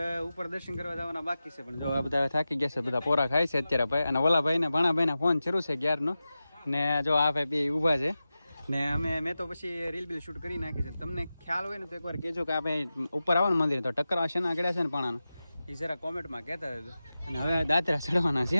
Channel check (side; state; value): both; inverted; correlation -0.94